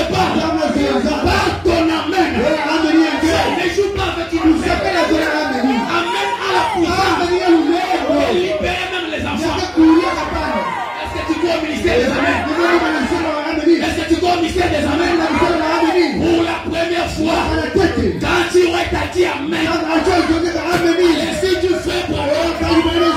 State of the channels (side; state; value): both; identical; correlation 1.00